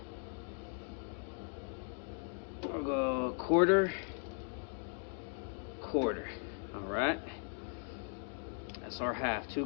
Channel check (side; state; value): right; silent; 52 dB below the other